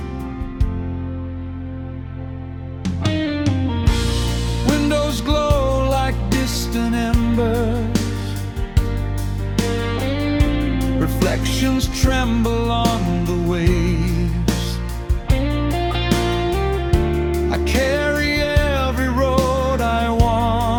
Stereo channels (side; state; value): both; identical; correlation 1.00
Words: Windows glow like distant embers, reflections tremble on the waves. I carry every road I